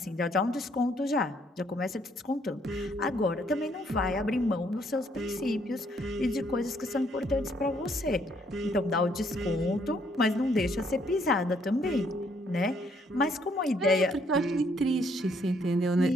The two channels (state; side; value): normal; both; correlation 0.68